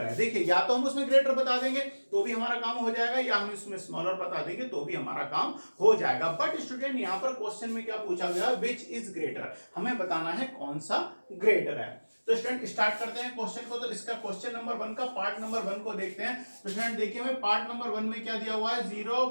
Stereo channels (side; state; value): both; inverted; correlation -1.00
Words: है। देखिए या तो हम उसमें ग्रेटर बता देंगे तो भी हमारा काम हो जाएगा, या हम इसमें स्मॉलर बता देंगे तो भी हमारा काम हो जाएगा। बट स्टूडेंट यहाँ पर क्वेश्चन में क्या पूछा गया, विच इज ग्रेटर, हमें बताना है कौन सा ग्रेटर है। तो स्टूडेंट स्टार्ट करते हैं क्वेश्चन को। तो इसका क्वेश्चन नंबर 1 का पार्ट नंबर 1 को देखते हैं। तो स्टूडेंट देखिए हमें पार्ट नंबर 1 में क्या दिया हुआ है